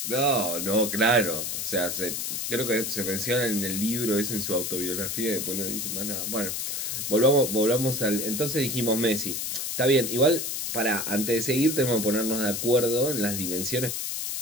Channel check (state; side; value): noise; left; hiss, 3 dB below the sound